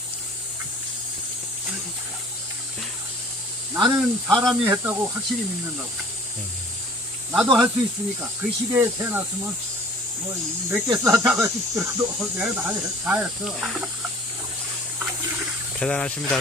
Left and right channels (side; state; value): both; normal; correlation 0.50